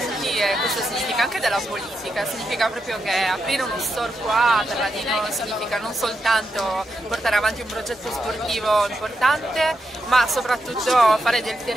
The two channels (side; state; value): both; normal; correlation 0.84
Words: e questo significa anche della politica, significa proprio che aprire uno store qua a Terradino significa non soltanto portare avanti un progetto sportivo importante, ma soprattutto fare del